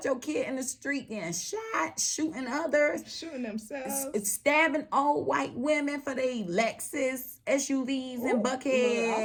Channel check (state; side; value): identical; both; correlation 1.00